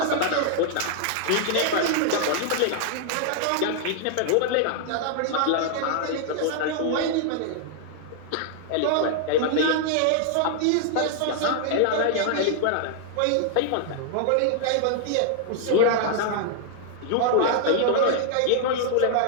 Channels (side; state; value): both; different; correlation -0.01